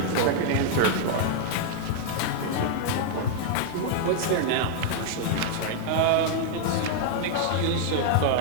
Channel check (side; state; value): both; different; correlation -0.01